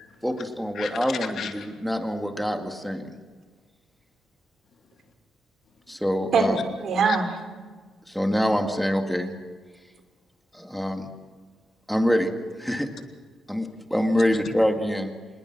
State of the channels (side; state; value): both; normal; correlation 0.90